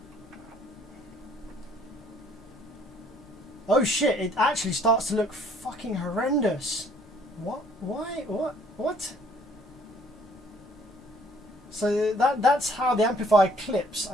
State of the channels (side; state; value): both; normal; correlation 0.60